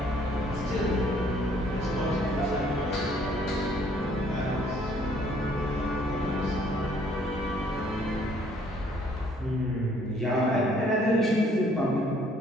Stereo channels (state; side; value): normal; both; correlation 0.62